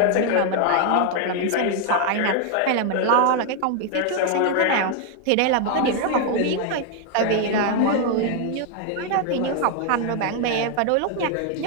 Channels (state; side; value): different; both; correlation 0.00